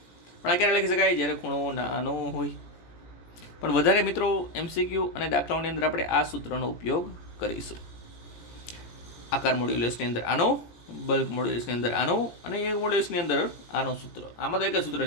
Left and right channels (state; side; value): late; right; 17 ms